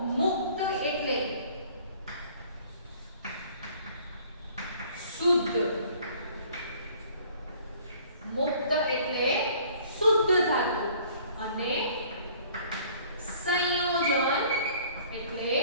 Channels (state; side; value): inverted; both; correlation -0.55